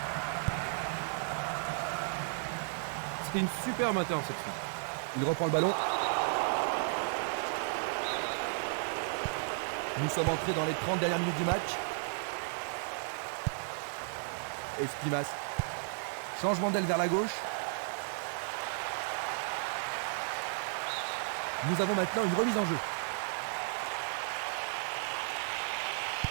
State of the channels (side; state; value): left; silent; 55 dB below the other